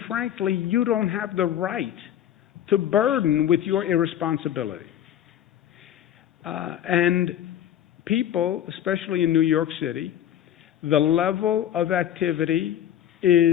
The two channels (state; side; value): quieter; right; 10.7 dB